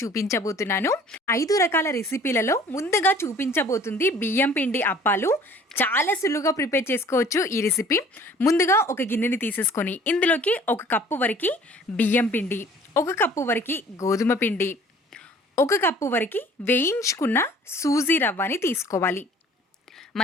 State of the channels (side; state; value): both; normal; correlation 0.52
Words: చూపించబోతున్నాను. 5 రకాల రెసిపీలలో ముందుగా చూపించబోతుంది బియ్యం పిండి అప్పాలు. చాలా సులువుగా ప్రిపేర్ చేసుకోవచ్చు ఈ రెసిపీ. ముందుగా ఒక గిన్నెని తీసేసుకొని ఇందులోకి 1 కప్పు వరకు బియ్యం పిండి, 1 కప్పు వరకు గోధుమ పిండి, 1 కప్పు వరకు వేయించుకున్న సూజీ రవ్వని తీసుకోవాలి.